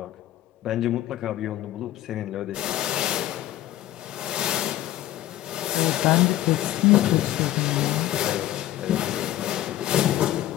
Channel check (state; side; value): quieter; right; 13.9 dB